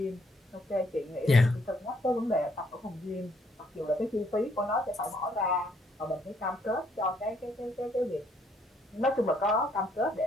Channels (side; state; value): both; normal; correlation 0.69